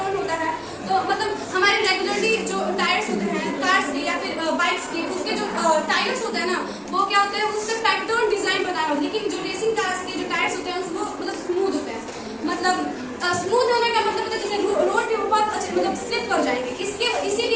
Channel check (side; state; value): both; identical; correlation 1.00